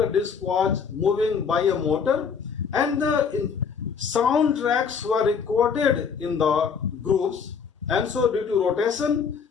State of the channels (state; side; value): quieter; right; 6.2 dB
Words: disc was moving by a motor, and the soundtracks were recorded in the grooves, and so due to rotation,